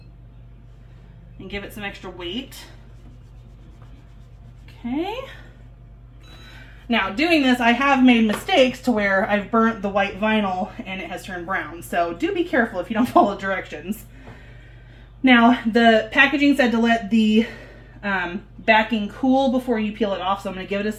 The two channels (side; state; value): both; identical; correlation 1.00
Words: and give it some extra weight. Okay. Now, doing this, I have made mistakes to where I've burnt the white vinyl and it has turned brown. So do be careful if you don't follow directions. Now, the packaging said to let the backing cool before you peel it off, so I'm going to give it a